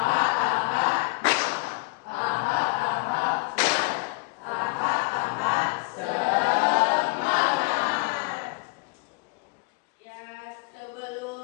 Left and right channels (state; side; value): quieter; right; 28.8 dB